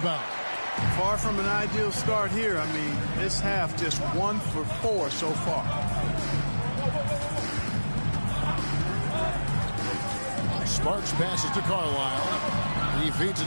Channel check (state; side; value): inverted; both; correlation -1.00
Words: Far from an ideal start here. I mean, this half just 1 for 4 so far. Sparks passes to Carlisle. He feeds it